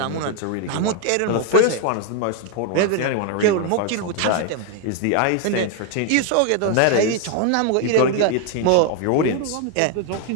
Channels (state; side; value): different; both; correlation 0.00